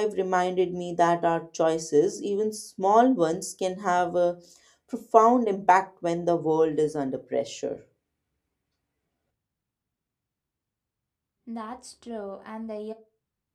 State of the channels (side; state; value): both; identical; correlation 1.00